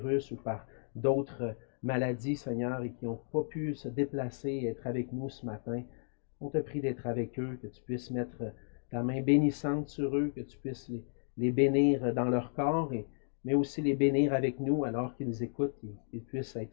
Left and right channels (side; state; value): right; silent; digital silence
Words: ou par d'autres maladies, Seigneur, et qui n'ont pas pu se déplacer et être avec nous ce matin. On te prie d'être avec eux, que tu puisses mettre ta main bénissante sur eux, que tu puisses les bénir dans leur corps, mais aussi les bénir avec nous alors qu'ils écoutent, qu'ils puissent